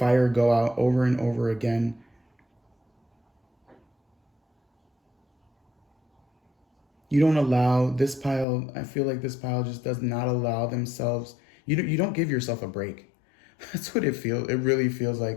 go out over and over again. You don't allow this pile. I feel like this pile just does not allow themselves. You don't give yourself a break. That's what it feels. It really feels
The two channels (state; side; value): drops out; right; at 8.5 s